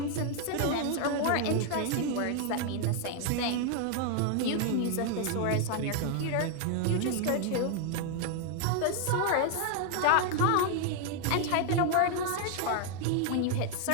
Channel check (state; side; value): different; both; correlation 0.00